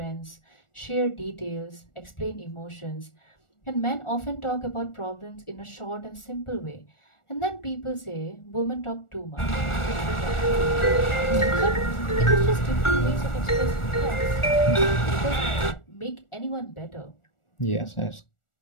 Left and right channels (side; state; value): right; late; 1.4 ms